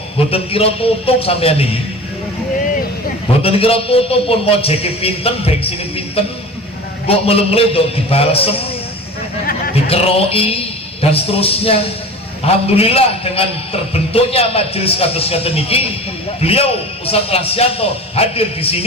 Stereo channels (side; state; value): both; normal; correlation 0.36